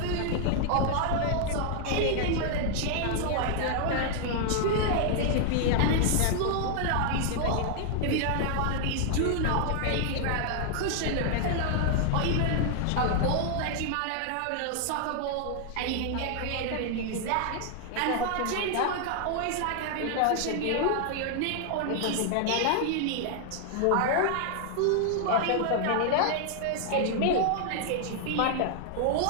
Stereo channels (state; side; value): different; both; correlation 0.00